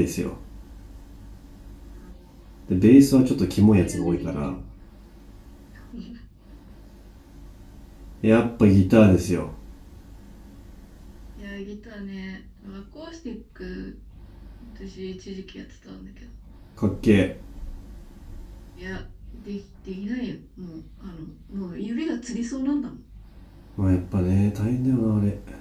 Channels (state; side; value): identical; both; correlation 1.00